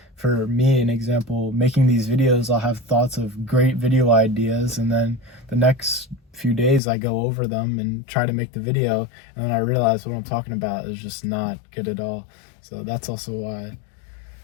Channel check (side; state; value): right; drops out; at 6.8 s